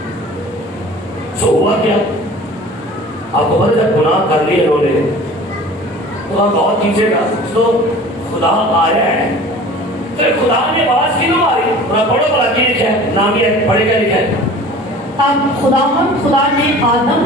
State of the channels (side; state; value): both; normal; correlation 0.43